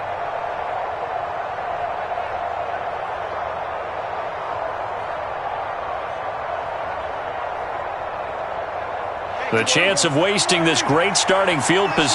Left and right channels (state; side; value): identical; both; correlation 1.00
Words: The chance of wasting this great starting field